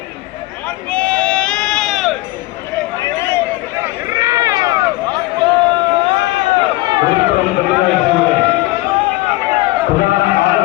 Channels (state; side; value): quieter; right; 19.8 dB